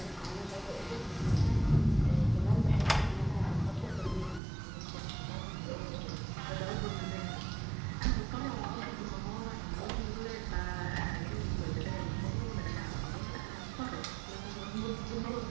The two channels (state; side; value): drops out; left; at 4.4 s